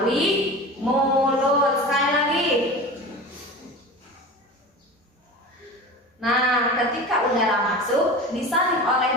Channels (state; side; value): normal; both; correlation 0.33